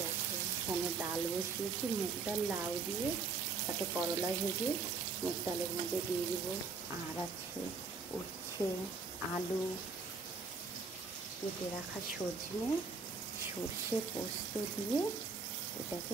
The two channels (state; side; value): quieter; left; 4.5 dB